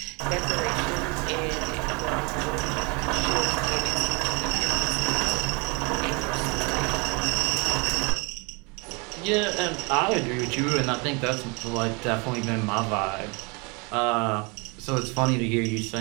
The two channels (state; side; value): quieter; left; 30.6 dB